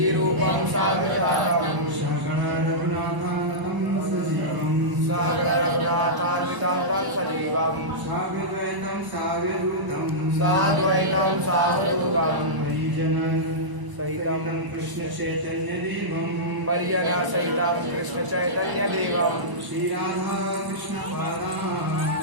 साग्रजातं सगण रघुनाथान्वितं सजीवं सागरनाथान्वितं सजीवं साद्वैतं सावधूतं साद्वैतं सावधूतं हरिजन सहितं कृष्ण चैतन्य देवं परिजना सहितं कृष्ण चैतन्य देवं श्रीराधा कृष्ण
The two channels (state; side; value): late; left; 1.0 ms